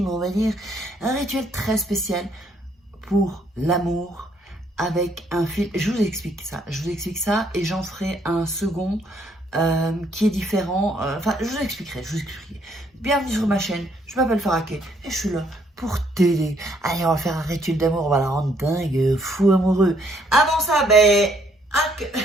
on va dire, un rituel très spécial pour l'amour avec un fil, je vous explique ça et j'en ferai un second qui est différent, enfin je vous expliquerai. Bienvenue sur ma chaîne, je m'appelle Faraké et je suis là pour t'aider. Allez, on va faire un rituel d'amour, on va la rendre dingue, fou amoureux. Avant ça,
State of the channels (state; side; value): normal; both; correlation 0.68